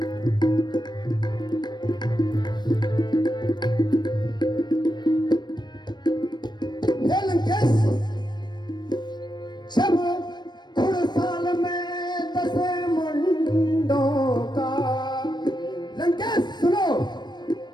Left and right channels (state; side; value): late; right; 0.21 ms